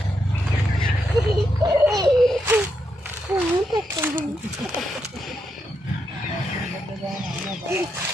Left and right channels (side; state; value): both; normal; correlation 0.82